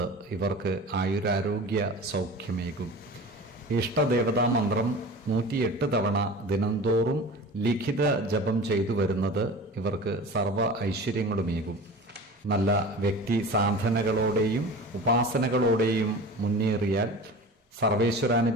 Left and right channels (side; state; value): both; normal; correlation 0.36